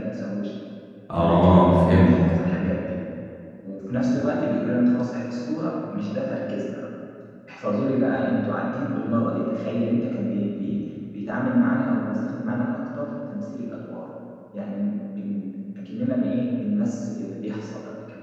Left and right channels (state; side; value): identical; both; correlation 1.00